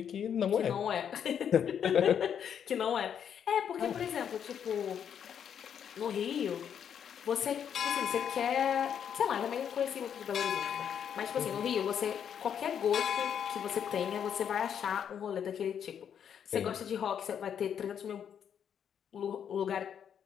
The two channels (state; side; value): quieter; right; 8.4 dB